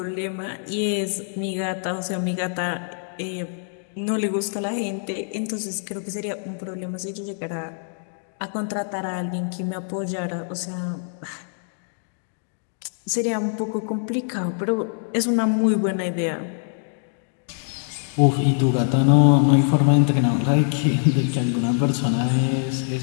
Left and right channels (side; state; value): right; silent; digital silence